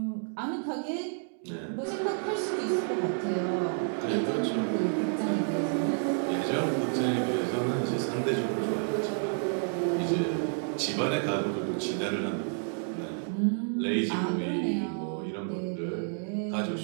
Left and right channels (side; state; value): left; silent; 58 dB below the other